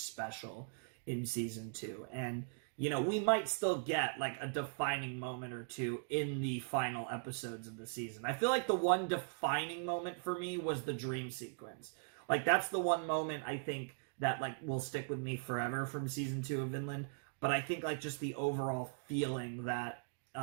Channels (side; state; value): left; silent; digital silence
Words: in Season 2. And, you know, we might still get, like, a defining moment or two in the final episodes of the season. I feel like the one defining moment for me was the dream sequence. Like, that's the one moment I think that, like, will stick with me forever from Season 2 of Vinland. But I think, like, just the overall feeling that